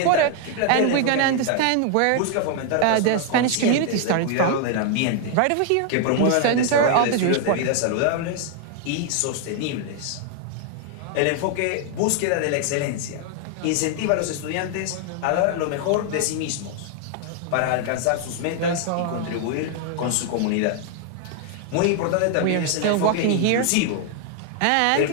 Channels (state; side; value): different; both; correlation 0.00